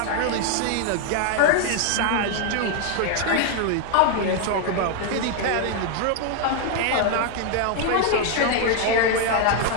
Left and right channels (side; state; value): both; different; correlation 0.01